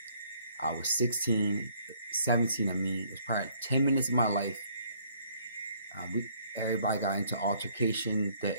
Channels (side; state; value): both; inverted; correlation -0.63